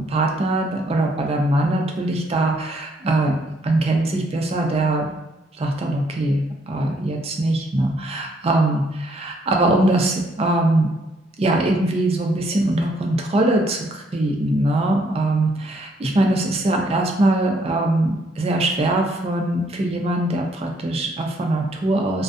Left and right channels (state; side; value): normal; both; correlation 0.68